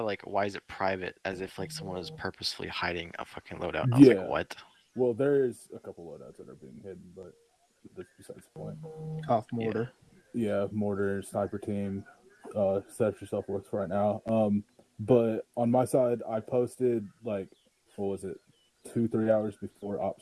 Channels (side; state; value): both; identical; correlation 1.00